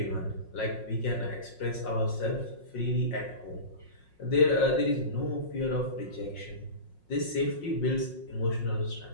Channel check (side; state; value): right; late; 5.5 ms